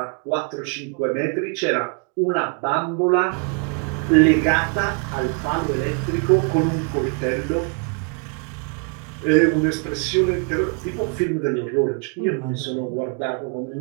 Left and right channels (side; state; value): left; quieter; 36.8 dB